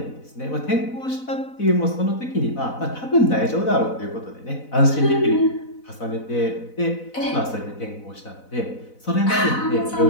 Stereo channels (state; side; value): late; right; 4.0 ms